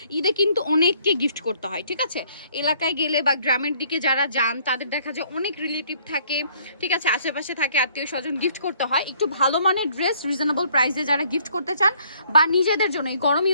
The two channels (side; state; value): both; inverted; correlation -0.63